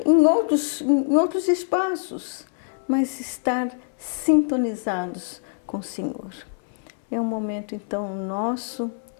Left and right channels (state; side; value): silent; right; 62 dB below the other